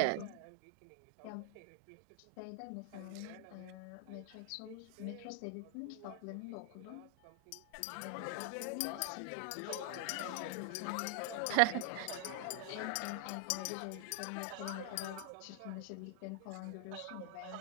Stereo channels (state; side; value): different; both; correlation 0.00